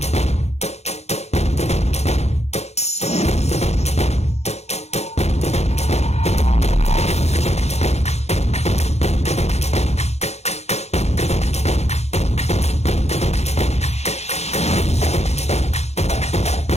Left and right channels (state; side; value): late; right; 0.31 ms